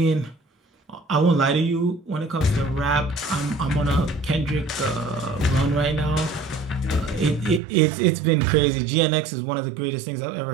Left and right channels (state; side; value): drops out; left; at 7.6 s